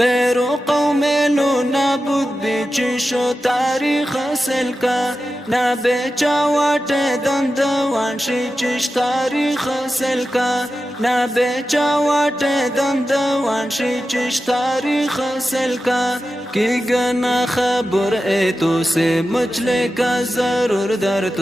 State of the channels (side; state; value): both; normal; correlation 0.92